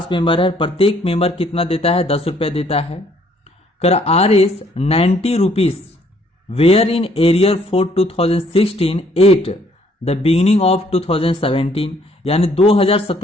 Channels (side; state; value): both; normal; correlation 0.64